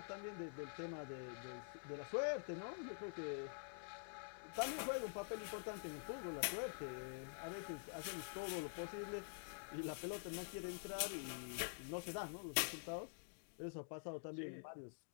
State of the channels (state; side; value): silent; right; digital silence